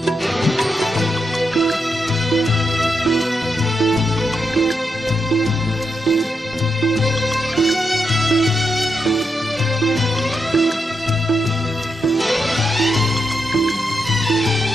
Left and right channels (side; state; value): both; normal; correlation 0.84